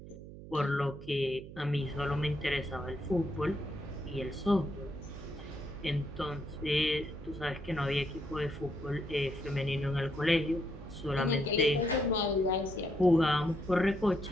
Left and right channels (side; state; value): right; noise; hum, 14 dB below the sound